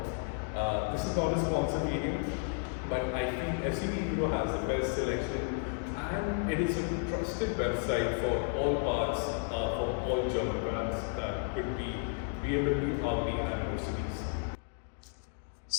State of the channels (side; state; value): right; silent; 56 dB below the other